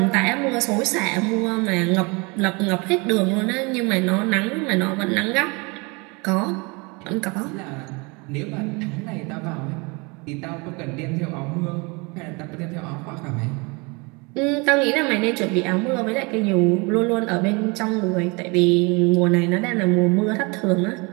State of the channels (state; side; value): quieter; left; 28.6 dB